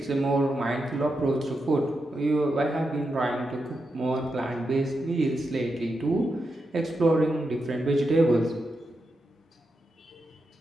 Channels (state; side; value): normal; both; correlation 0.86